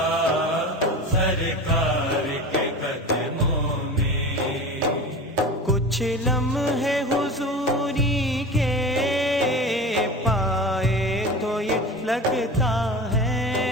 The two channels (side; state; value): both; normal; correlation 0.32